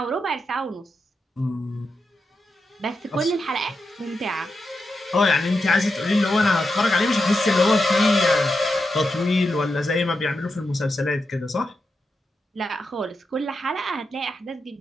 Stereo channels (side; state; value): both; normal; correlation 0.87